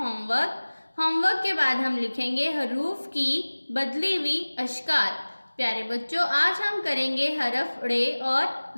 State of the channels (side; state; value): both; inverted; correlation -1.00